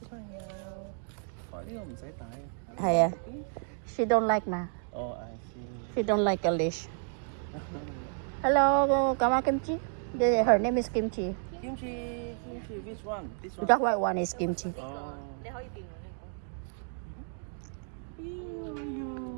Yeah. She don't like Oh, I see. She don't like a leash. Hello, Kama Kimchi. Her name is Kimchi. Kimchi, which one? This one? That white one is Kimchi. Oh.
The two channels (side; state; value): left; silent; 57 dB below the other